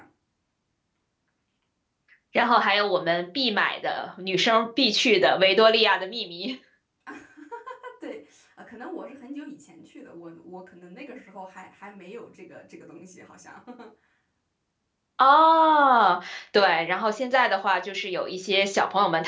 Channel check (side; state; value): both; identical; correlation 1.00